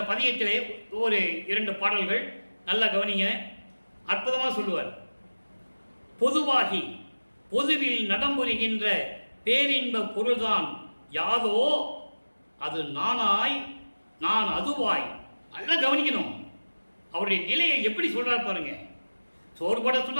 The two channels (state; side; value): inverted; both; correlation -1.00